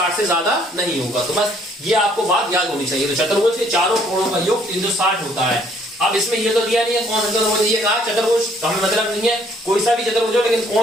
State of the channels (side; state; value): both; normal; correlation 0.63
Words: से ज्यादा नहीं होगा। तो बस ये आपको बात याद होनी चाहिए। तो चतुर्भुज के चारों कोणों का योग 360 होता है। अब इसमें ये तो दिया नहीं है कौन सा चतुर्भुज, ये कहा चतुर्भुज, तो हमें मतलब नहीं है कोई सा भी चतुर्भुज हो, लेकिन